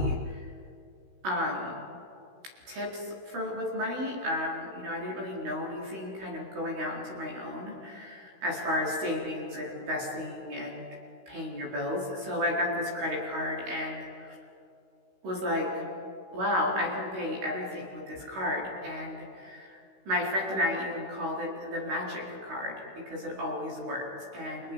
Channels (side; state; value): left; late; 16 ms